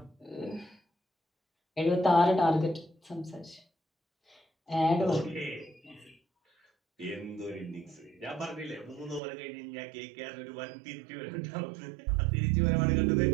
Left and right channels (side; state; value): left; drops out; at 9.2 s